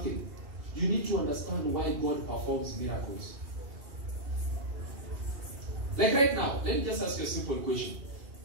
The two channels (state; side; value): late; left; 2.8 ms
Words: You need to understand why God performs miracles. Like right now, let me just ask you a simple question.